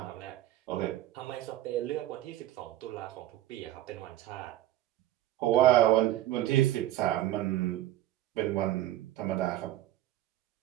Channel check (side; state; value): left; quieter; 14.1 dB